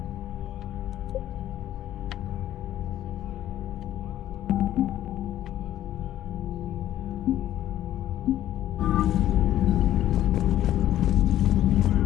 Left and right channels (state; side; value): quieter; right; 12.6 dB